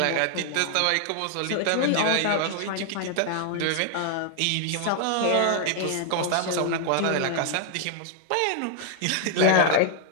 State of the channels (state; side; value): different; both; correlation 0.00